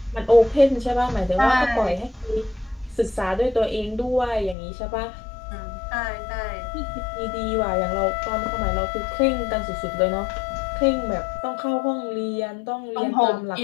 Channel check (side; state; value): right; drops out; at 4.5 s